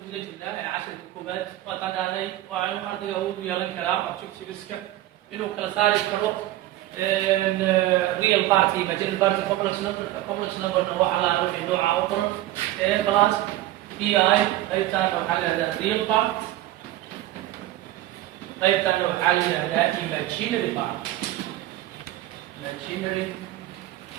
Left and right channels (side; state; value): left; quieter; 15.3 dB